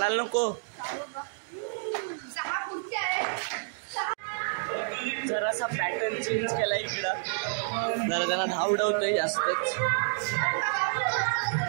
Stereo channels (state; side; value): silent; left; digital silence